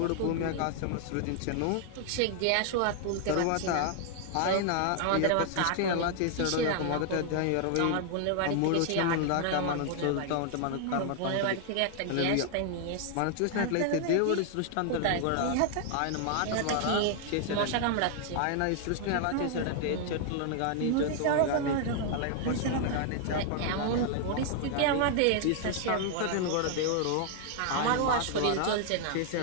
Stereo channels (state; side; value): different; both; correlation 0.00